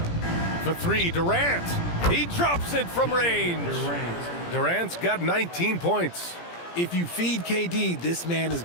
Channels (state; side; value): late; right; 17 ms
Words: For 3, Durant. He drops it from range. Durant's got 19 points. If you feed KD, this man is